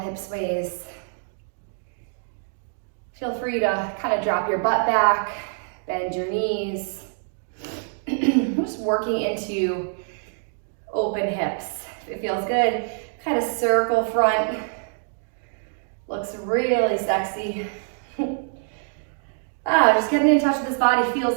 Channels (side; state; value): left; silent; digital silence